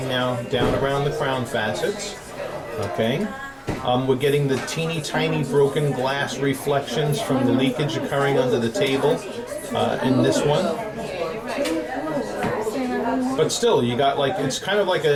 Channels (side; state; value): both; identical; correlation 1.00